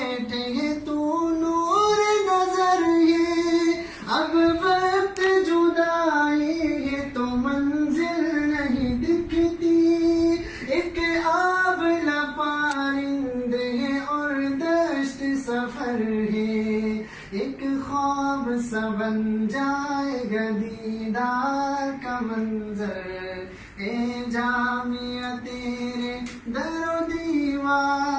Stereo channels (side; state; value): both; identical; correlation 1.00